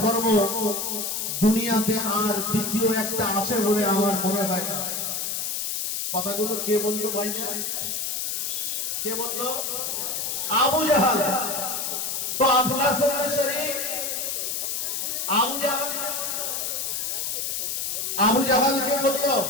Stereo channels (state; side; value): noise; left; hiss, 2 dB below the sound